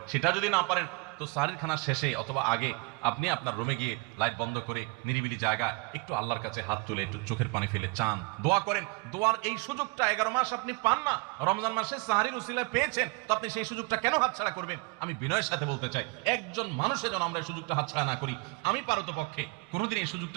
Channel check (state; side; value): quieter; left; 28.3 dB